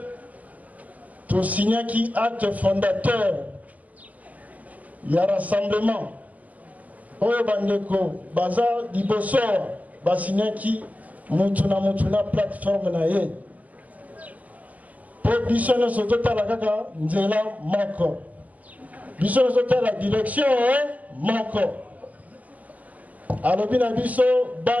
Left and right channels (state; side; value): late; left; 0.077 ms